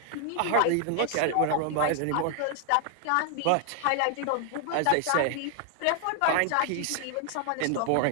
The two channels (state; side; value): different; both; correlation 0.00